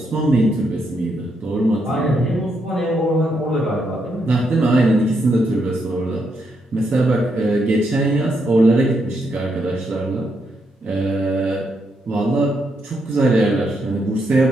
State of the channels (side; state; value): both; normal; correlation 0.79